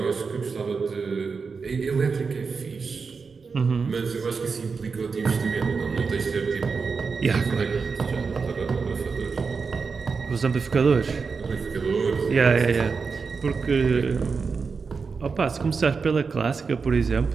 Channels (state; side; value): quieter; left; 5.0 dB